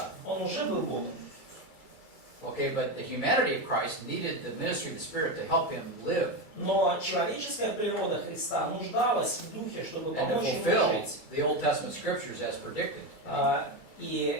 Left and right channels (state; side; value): late; right; 2.3 ms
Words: Он уже был Богом. Okay, but the humanity of Christ needed the ministry of the Spirit to help him live Но человеческая природа Христа нуждалась в Духе, чтобы and to помочь ему fulfill жить. the Old Testament scriptures as predicted. И